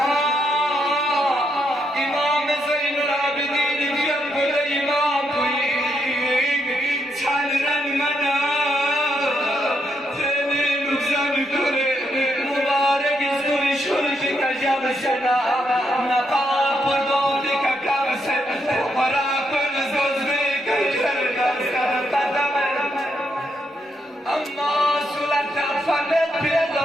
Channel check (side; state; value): both; normal; correlation 0.79